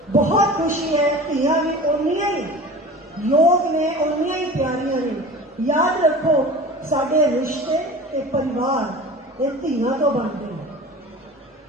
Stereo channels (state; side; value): normal; both; correlation 0.37